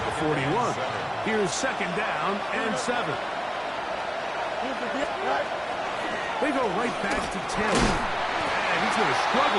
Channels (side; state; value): both; identical; correlation 1.00